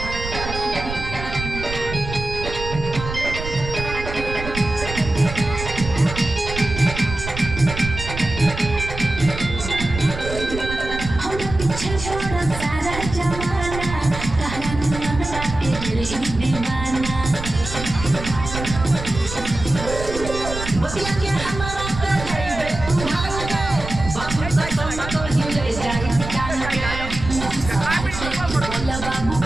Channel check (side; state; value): right; noise; rumble, 8 dB below the sound